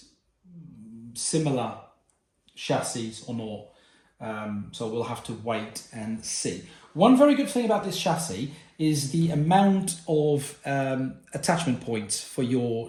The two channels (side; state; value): both; identical; correlation 1.00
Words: similar chassis or not. So we'll have to wait and see. One very good thing about this chassis is the amount of attachment points for your